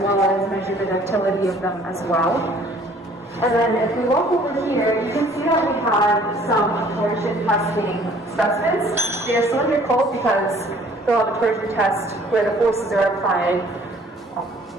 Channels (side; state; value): both; normal; correlation 0.55